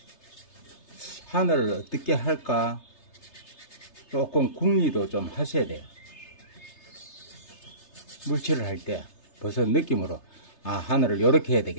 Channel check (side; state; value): right; late; 3.3 ms